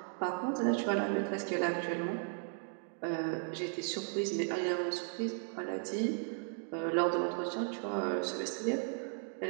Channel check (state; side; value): silent; left; 54 dB below the other